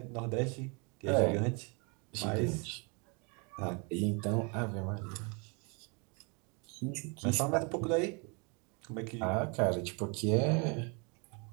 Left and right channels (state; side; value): quieter; left; 32.9 dB